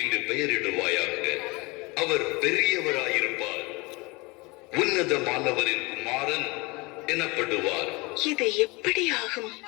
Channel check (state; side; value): quieter; right; 25.5 dB